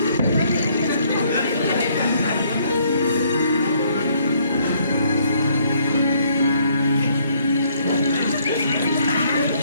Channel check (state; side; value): inverted; both; correlation -0.66